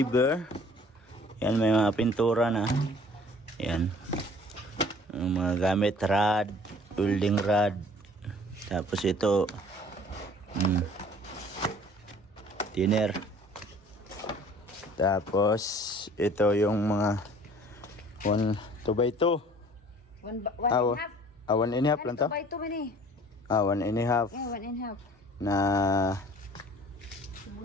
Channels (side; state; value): both; normal; correlation 0.51